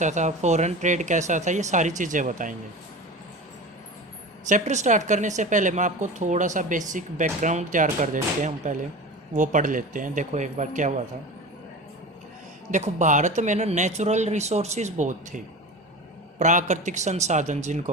था, फॉरेन ट्रेड कैसा था, ये सारी चीज़ें बताएंगे। चैप्टर स्टार्ट करने से पहले मैं आपको थोड़ा सा बेसिक बैकग्राउंड तैयार कर देते हैं। हम पहले वो पढ़ लेते हैं। देखो एक बार क्या हुआ था। देखो, भारत में ना नेचुरल रिसोर्सेज बहुत थे, प्राकृतिक संसाधन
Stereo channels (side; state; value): both; normal; correlation 0.31